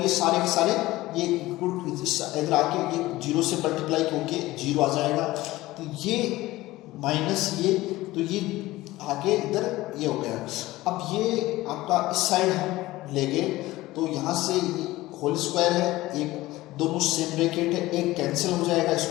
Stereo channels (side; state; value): right; quieter; 17.9 dB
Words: सारे के सारे ये इधर आके ये 0 से मल्टीप्लाई होके 0 आ जाएगा, तो ये माइनस ये तो ये आगे इधर ये हो गया। अब ये आपका इस साइड हम लेंगे तो यहाँ से होल स्क्वायर है, एक दोनों सेम ब्रैकेट है, एक कैंसिल हो जाएगा